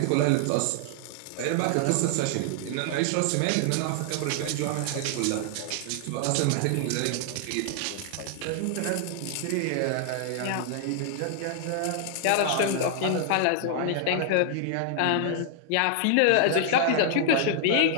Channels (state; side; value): different; both; correlation 0.00